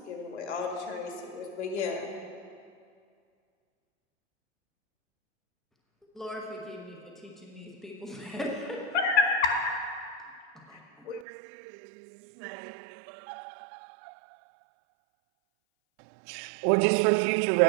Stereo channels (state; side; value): drops out; left; at 11.2 s